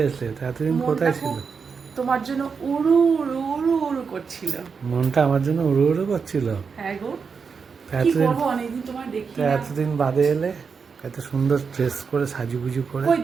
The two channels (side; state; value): left; quieter; 5.6 dB